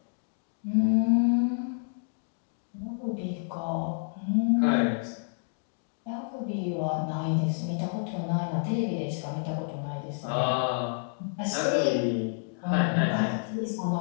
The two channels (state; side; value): silent; right; digital silence